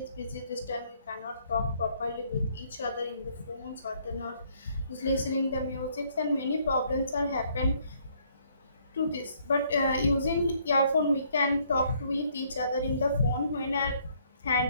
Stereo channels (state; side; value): inverted; both; correlation -0.66